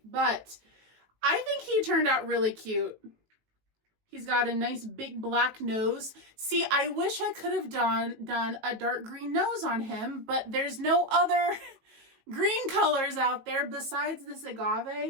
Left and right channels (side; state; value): left; late; 18 ms